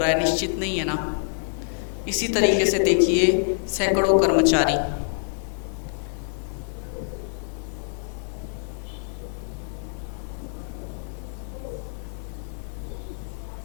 है, निश्चित नहीं है ना। इसी तरीके से देखिए सैकड़ों कर्मचारी,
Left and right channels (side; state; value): right; silent; 61 dB below the other